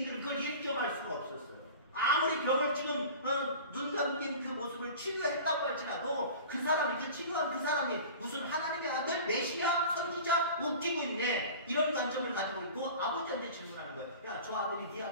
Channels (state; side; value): inverted; both; correlation -0.38